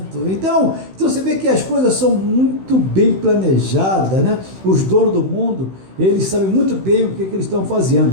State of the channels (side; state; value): left; late; 16 ms